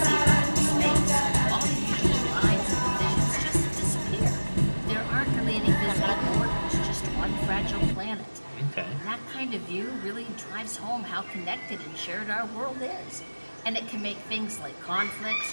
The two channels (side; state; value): both; inverted; correlation -1.00